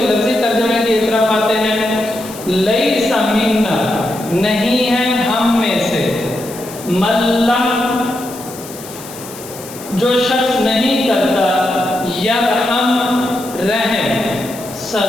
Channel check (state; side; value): noise; left; hiss, 15 dB below the sound